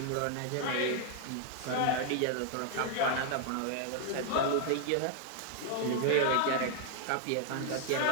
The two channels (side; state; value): both; different; correlation 0.00